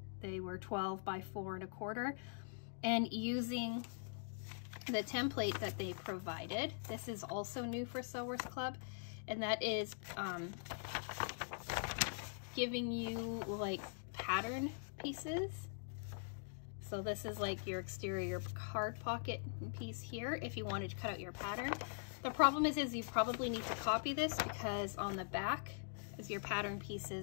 They were 12 by 4 1/4. And using the template that they provided, this is also new for Sewers Club, and that is giving you like pattern pieces. So this is like your exterior card pocket piece here if you wanted to cut out your pattern. The problem is you probably need to copy this, because on the back as your pattern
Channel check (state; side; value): silent; right; digital silence